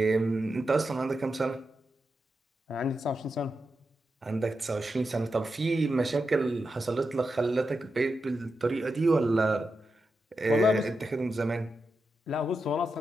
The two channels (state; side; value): normal; both; correlation 0.88